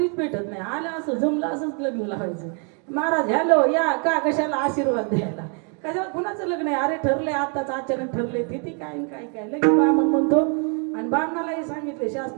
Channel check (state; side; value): quieter; left; 39.6 dB